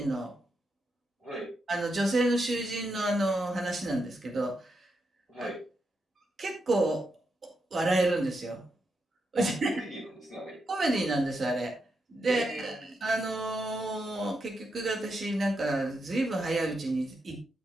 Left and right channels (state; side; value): normal; both; correlation 0.84